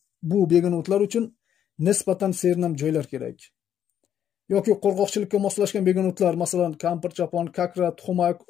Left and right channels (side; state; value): right; quieter; 9.6 dB